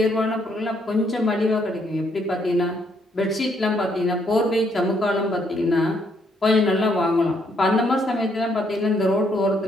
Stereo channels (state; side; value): normal; both; correlation 0.71